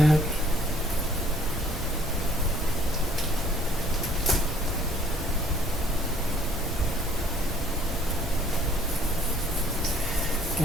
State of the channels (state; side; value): normal; both; correlation 0.59